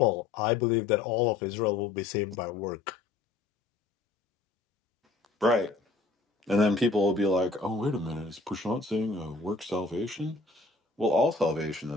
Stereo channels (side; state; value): right; quieter; 3.6 dB